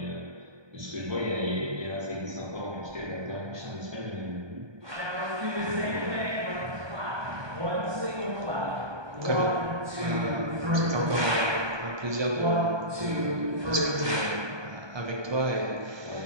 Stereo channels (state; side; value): late; left; 1.2 ms